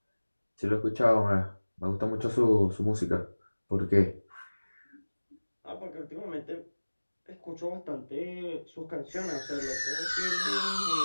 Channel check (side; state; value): both; inverted; correlation -1.00